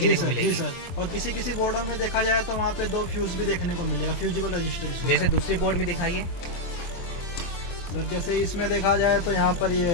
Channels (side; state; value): right; late; 23 ms